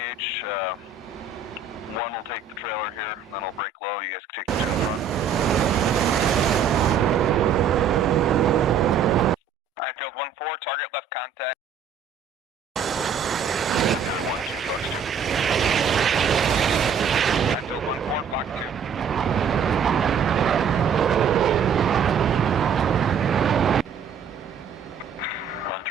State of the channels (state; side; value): quieter; left; 6.5 dB